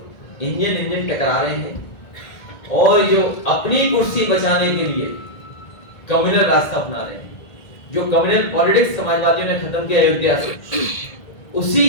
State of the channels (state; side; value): late; right; 1.7 ms